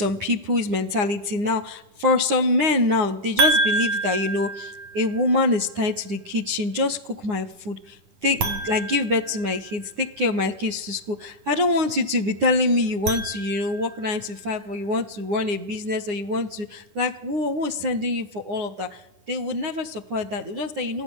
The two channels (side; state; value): left; late; 9.7 ms